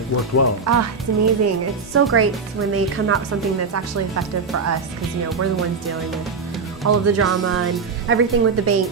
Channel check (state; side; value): quieter; left; 4.9 dB